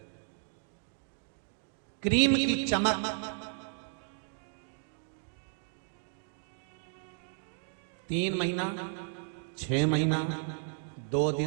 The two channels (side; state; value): left; silent; digital silence